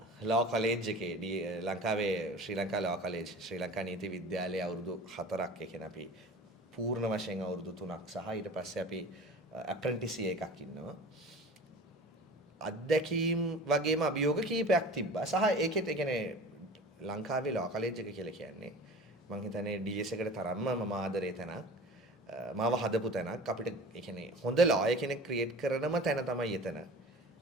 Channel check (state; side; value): normal; both; correlation 0.39